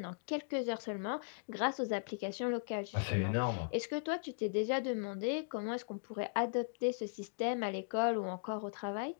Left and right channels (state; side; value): silent; right; digital silence